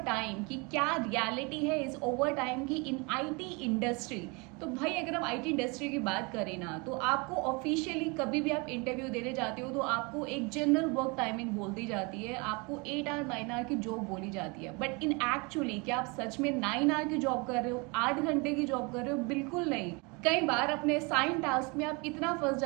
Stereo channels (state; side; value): quieter; left; 29.2 dB